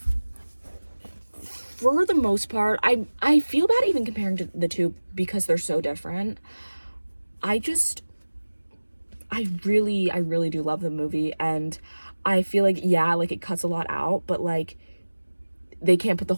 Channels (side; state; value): both; inverted; correlation -1.00